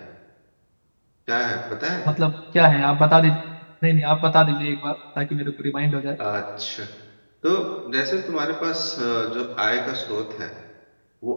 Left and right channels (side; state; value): both; inverted; correlation -1.00